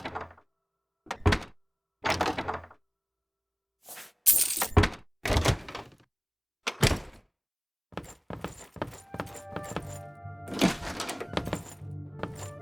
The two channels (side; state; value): both; identical; correlation 1.00